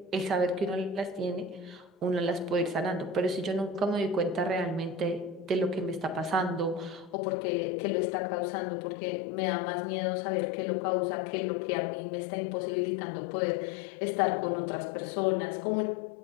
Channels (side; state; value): right; drops out; at 7.2 s